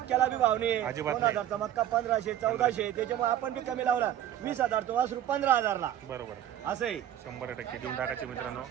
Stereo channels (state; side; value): quieter; left; 11.5 dB